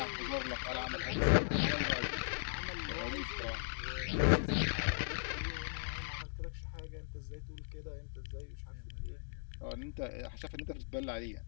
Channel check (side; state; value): right; silent; digital silence